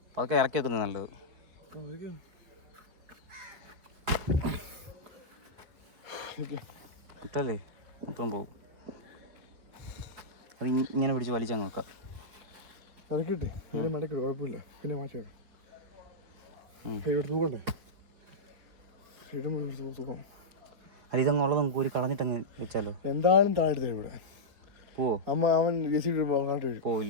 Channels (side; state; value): left; late; 4.8 ms